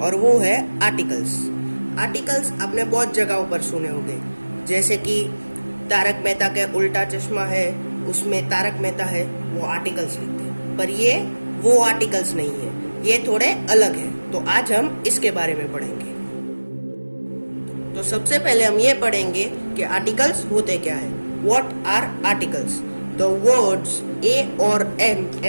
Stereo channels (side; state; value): both; inverted; correlation -1.00